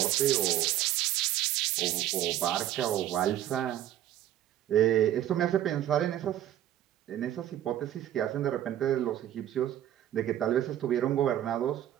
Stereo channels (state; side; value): quieter; left; 12.1 dB